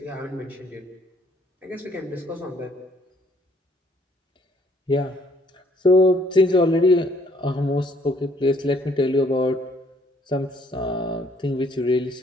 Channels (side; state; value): both; normal; correlation 0.63